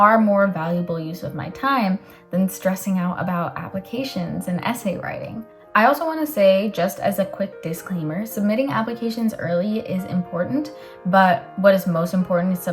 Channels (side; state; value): both; identical; correlation 1.00